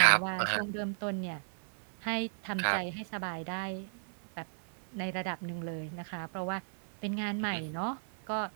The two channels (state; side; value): silent; left; 54 dB below the other